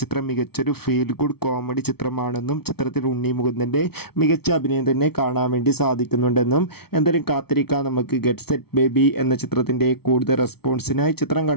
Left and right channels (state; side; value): late; right; 0.96 ms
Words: ചിത്രം മികച്ചൊരു ഫീൽ ഗുഡ് കോമഡി ചിത്രമാണെന്നും ചിത്രത്തിൽ ഉണ്ണി മുകുന്ദൻ്റെ മികച്ച അഭിനയം തന്നെ കാണാൻ വേണ്ടി സാധിക്കുന്നുണ്ടെന്നും. എന്തായാലും കാത്തിരിക്കാം നമുക്ക് ഗെറ്റ് സെറ്റ് ബേബി എന്ന ചിത്രത്തിൻ്റെ കൂടുതൽ റെസ്പോൺസിനായി. ചിത്രം